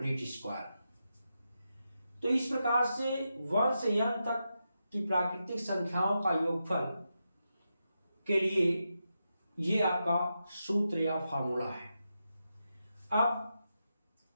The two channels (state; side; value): inverted; both; correlation -0.87